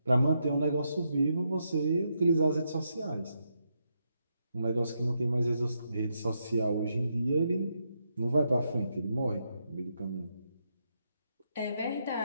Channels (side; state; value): both; inverted; correlation -0.81